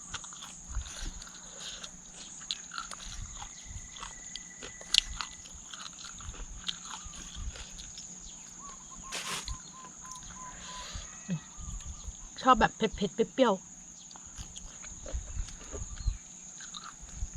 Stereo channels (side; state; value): both; identical; correlation 1.00